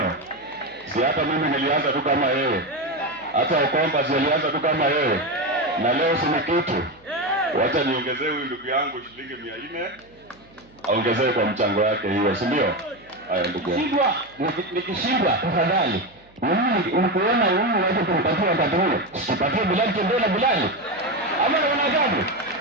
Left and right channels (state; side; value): noise; right; hum, 29 dB below the sound